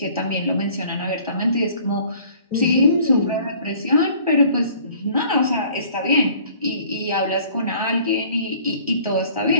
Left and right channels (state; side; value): inverted; both; correlation -0.54